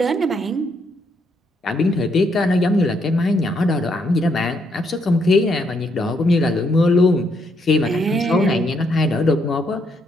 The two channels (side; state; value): both; normal; correlation 0.74